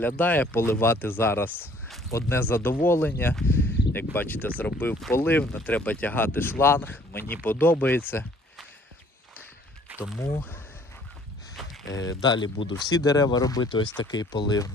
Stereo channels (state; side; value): normal; both; correlation 0.58